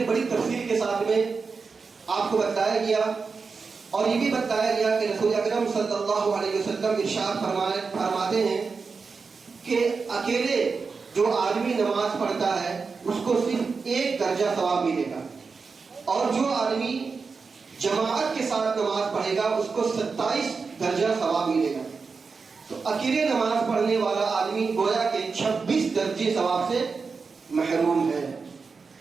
بڑی تفصیل کے ساتھ میں آپ کو بتایا گیا اور یہ بھی بتایا گیا کہ رسول اکرم صلی اللہ علیہ وسلم ارشاد فرماتے ہیں کہ اکیلے جو آدمی نماز پڑھتا ہے اس کو صرف 1 درجہ ثواب ملے گا، اور جو آدمی جماعت کے ساتھ نماز پڑھے گا اس کو 27 درجہ ثواب ملے گا. تو اکیلے نماز پڑھنے والا آدمی گویا کہ 26 درجے ثواب سے محروم ہے.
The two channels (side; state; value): left; quieter; 4.8 dB